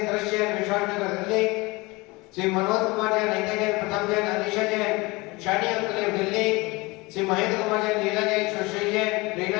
दृश्य जैन, विशाल नगर दिल्ली, श्री मनोज कुमार जैन, नीता जैन, प्रथम जैन, अनिशा जैन, शानी अंकलेव दिल्ली, श्री महेंद्र कुमार जैन, लीला जैन, सुश्री जैन,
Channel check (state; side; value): quieter; right; 23.8 dB